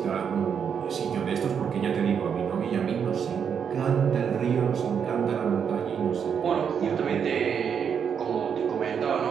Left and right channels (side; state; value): left; quieter; 7.3 dB